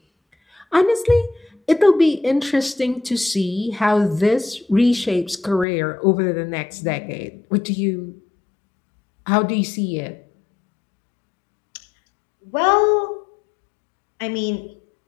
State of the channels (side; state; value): right; drops out; at 5.7 s